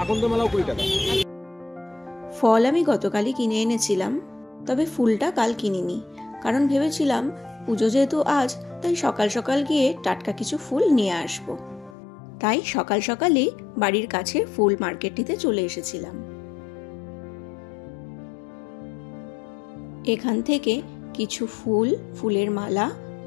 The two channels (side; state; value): right; drops out; at 12.0 s